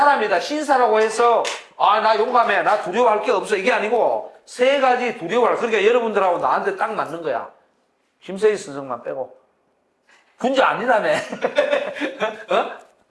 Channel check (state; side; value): identical; both; correlation 1.00